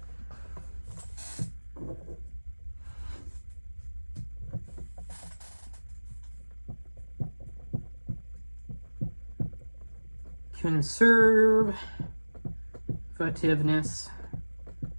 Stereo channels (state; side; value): inverted; both; correlation -1.00